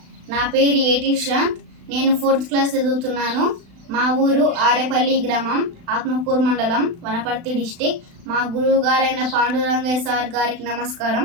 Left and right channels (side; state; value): left; late; 36 ms